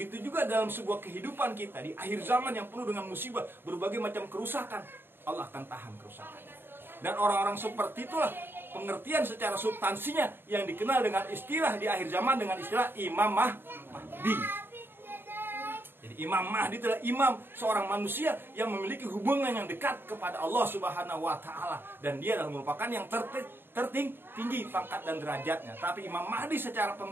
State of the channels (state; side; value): late; left; 0.10 ms